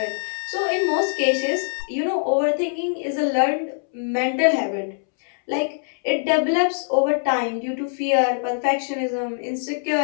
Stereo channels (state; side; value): silent; right; 64 dB below the other